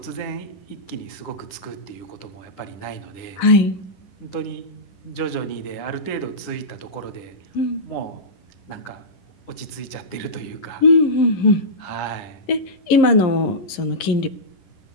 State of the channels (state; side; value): late; right; 11 ms